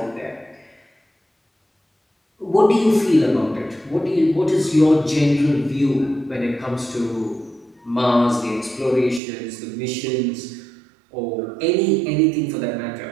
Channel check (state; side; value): drops out; left; at 9.2 s